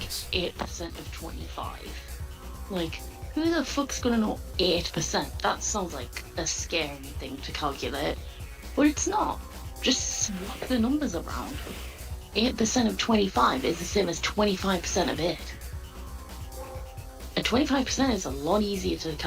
8% of 25, like who the fuck's gonna know 8%? That sounds like a scary thing to calculate, but it's not. Just swap the numbers around. 8% of 25 is the same as 25% of 8. And 25% is a lot easier to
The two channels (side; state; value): both; identical; correlation 1.00